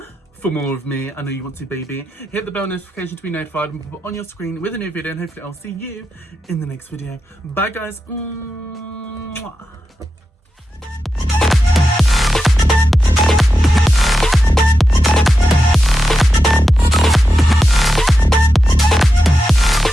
for more of me. I know you want to, baby. Hit the bell notification to be notified and pop it on your screen with a new video, and hopefully I'll see you in the next video. Bye, guys. Mwah.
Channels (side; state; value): both; normal; correlation 0.89